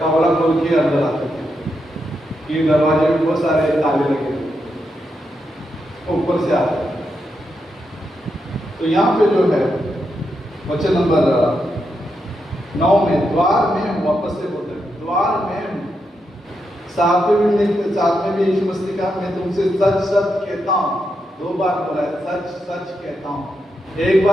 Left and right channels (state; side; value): normal; both; correlation 0.83